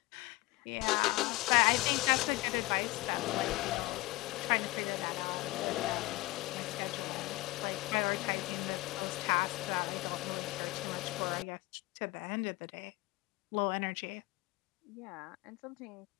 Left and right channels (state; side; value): quieter; right; 20.9 dB